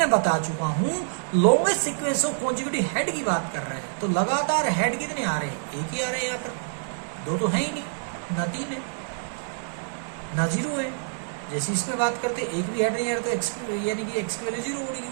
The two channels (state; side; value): silent; left; digital silence